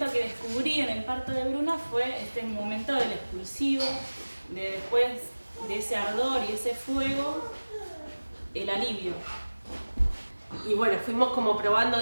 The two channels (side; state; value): both; inverted; correlation -1.00